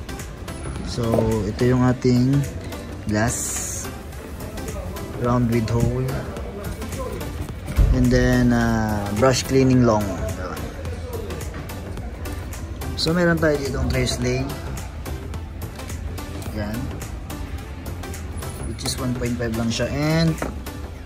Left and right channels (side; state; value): both; identical; correlation 1.00